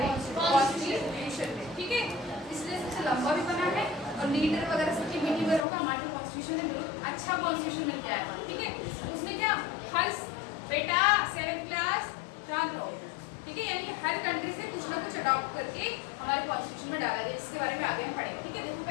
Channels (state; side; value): drops out; right; at 5.7 s